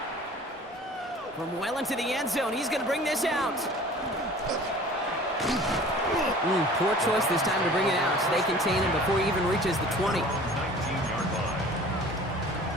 From well into the end zone, he's going to bring this out. Poor choice this time to bring it out. So they contain him before he even reaches the 20. 19-yard line.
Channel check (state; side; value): normal; both; correlation 0.45